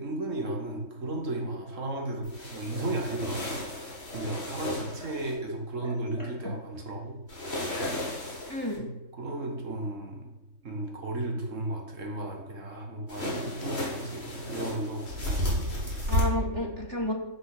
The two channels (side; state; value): left; late; 3.1 ms